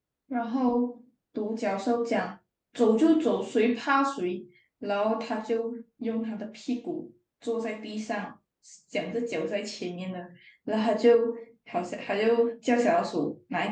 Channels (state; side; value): identical; both; correlation 1.00